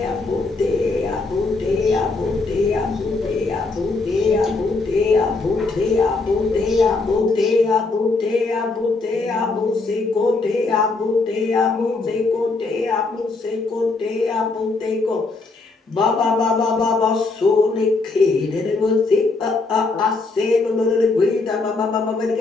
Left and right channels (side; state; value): right; quieter; 3.7 dB